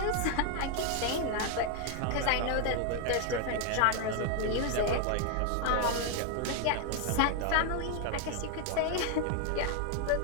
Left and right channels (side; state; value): both; different; correlation 0.00